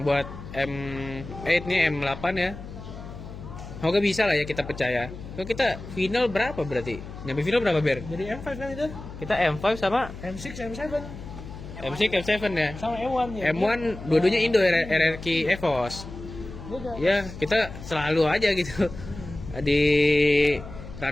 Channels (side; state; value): left; noise; hum, 12 dB below the sound